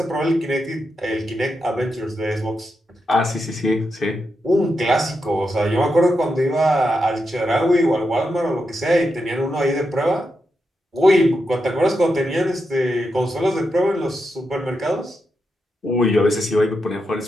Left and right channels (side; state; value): both; normal; correlation 0.86